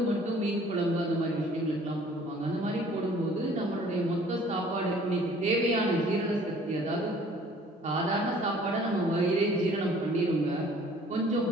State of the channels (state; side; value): normal; both; correlation 0.54